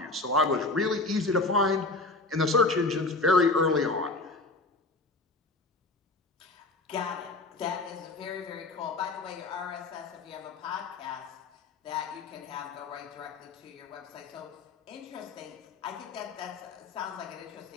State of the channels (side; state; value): right; quieter; 3.2 dB